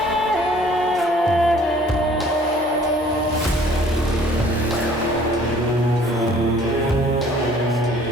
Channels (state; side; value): normal; both; correlation 0.55